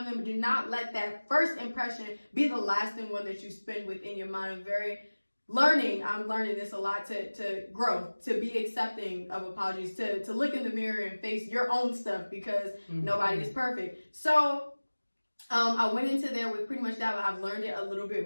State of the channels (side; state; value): both; inverted; correlation -1.00